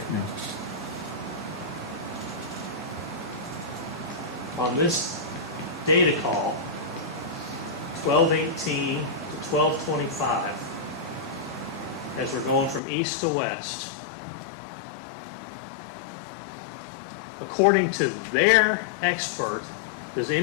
Yeah. On this data call, 1218 to 1225, as we're going from east to west, according to their expert, does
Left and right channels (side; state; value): right; drops out; at 12.8 s